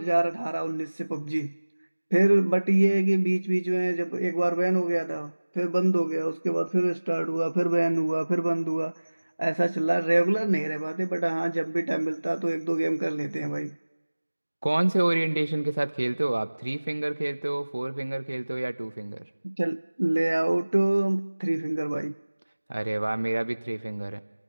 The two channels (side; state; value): both; inverted; correlation -1.00